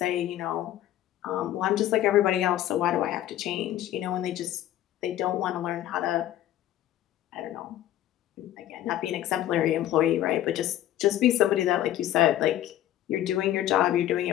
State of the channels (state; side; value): quieter; right; 12.9 dB